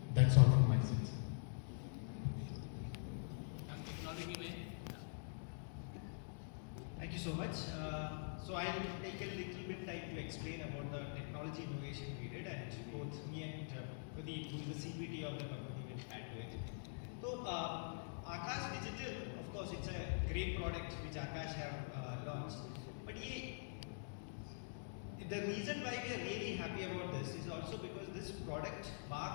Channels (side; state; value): right; silent; digital silence